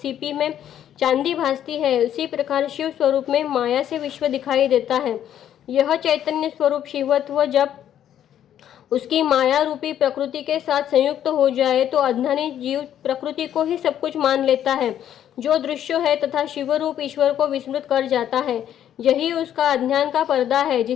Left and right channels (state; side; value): quieter; right; 10.5 dB